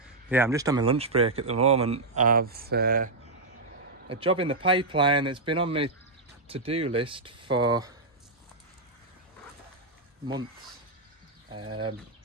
Yeah, I'm just on my lunch break at the moment. I've a job in the pipeline that's been on my to-do list for months, and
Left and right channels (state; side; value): quieter; left; 3.1 dB